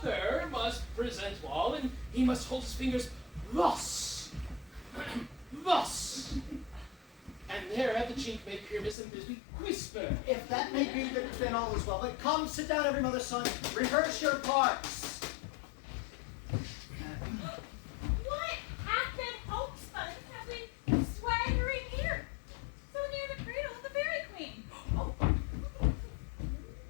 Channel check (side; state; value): right; drops out; at 9.0 s